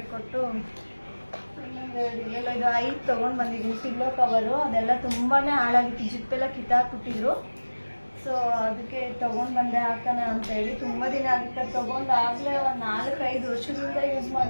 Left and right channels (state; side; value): inverted; both; correlation -1.00